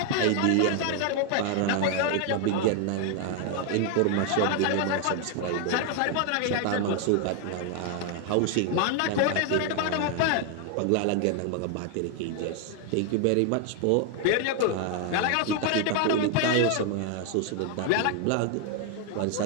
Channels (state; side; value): different; both; correlation 0.00